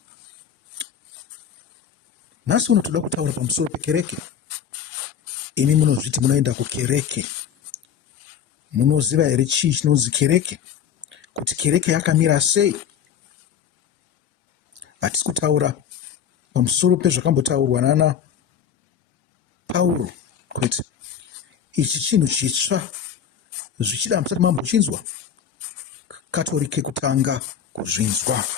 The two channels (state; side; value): quieter; right; 8.3 dB